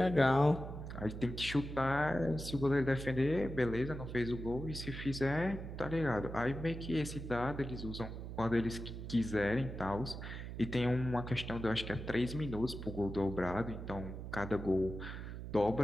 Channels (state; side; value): noise; right; hum, 8 dB below the sound